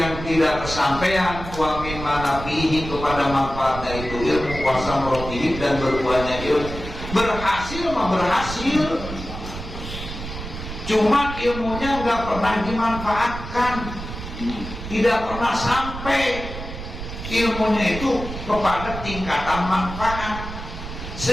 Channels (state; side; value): noise; right; rumble, 9 dB below the sound